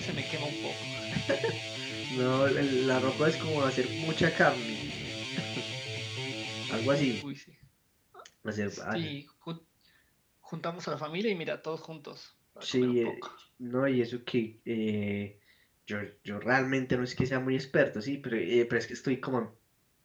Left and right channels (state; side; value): identical; both; correlation 1.00